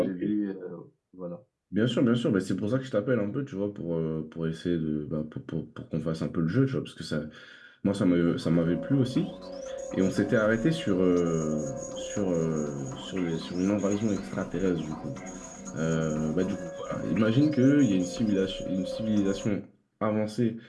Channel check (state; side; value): identical; both; correlation 1.00